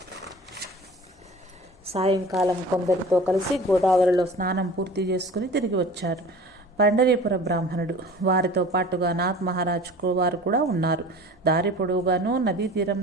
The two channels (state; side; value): normal; both; correlation 0.41